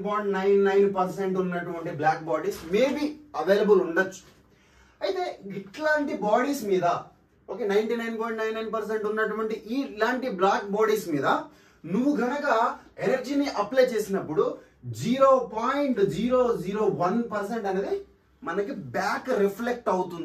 ఉన్నటువంటి బ్లాక్ బాడీస్ మేబీ అవైలబుల్ ఉండొచ్చు. అయితే ఇట్లాంటి బాడీస్ మీద ఓకే 99.99% ఉన్నటువంటి ఇలాంటి బ్లాక్ బాడీస్ మీద నువ్వు గనక ఎనర్జీని అప్లై చేసినప్పుడు 0.001% అనేది మనకి బ్యాక్ రిఫ్లెక్ట్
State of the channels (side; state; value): both; identical; correlation 1.00